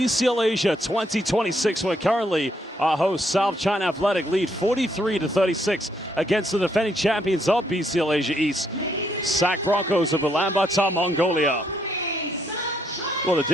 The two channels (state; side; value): normal; both; correlation 0.73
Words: Asia 2026, where currently our host South China Athletic lead 43-36 against the defending champions of BCL Asia East, SAC Broncos of Ulaanbaatar, Mongolia. Well, the